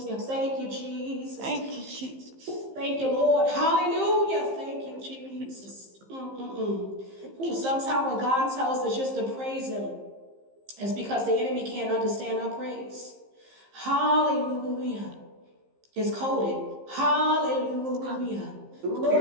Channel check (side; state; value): left; late; 15 ms